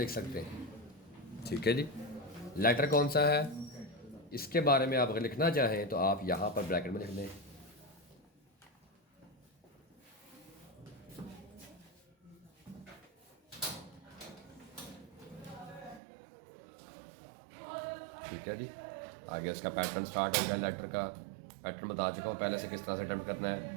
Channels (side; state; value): left; drops out; at 16.0 s